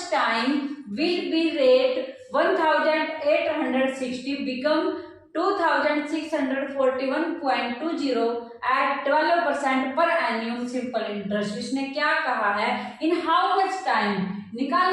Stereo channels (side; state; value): both; identical; correlation 1.00